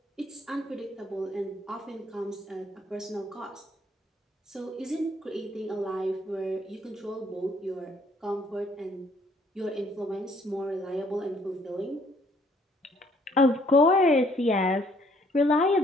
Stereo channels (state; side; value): normal; both; correlation 0.64